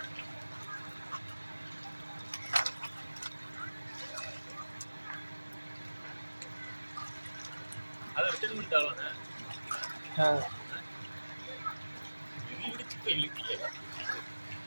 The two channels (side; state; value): both; inverted; correlation -1.00